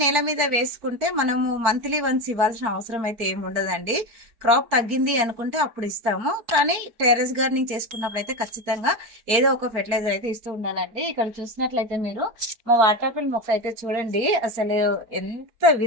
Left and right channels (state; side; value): late; left; 4.4 ms